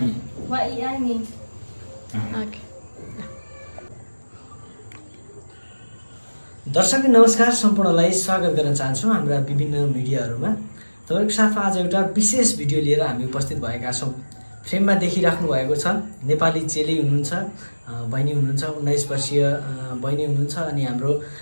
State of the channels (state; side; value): inverted; both; correlation -1.00